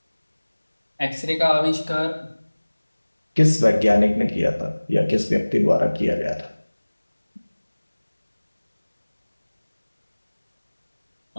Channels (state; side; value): inverted; both; correlation -1.00